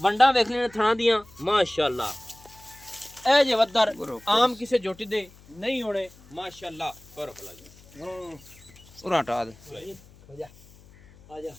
वंडा वेख लेने थां दियां माशाअल्लाह ए जे वद्दर आम किसे जोटी दे नहीं होने माशाअल्लाह पर भला जी उरा हटा दे आजा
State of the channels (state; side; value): noise; left; hum, 24 dB below the sound